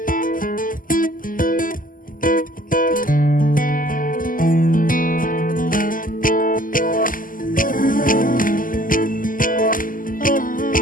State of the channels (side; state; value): right; late; 0.40 ms